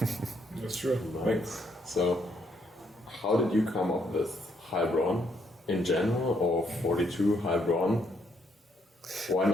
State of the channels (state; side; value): normal; both; correlation 0.73